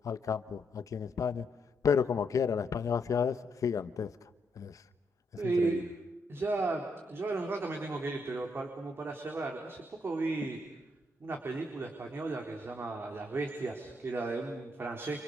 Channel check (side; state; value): both; normal; correlation 0.77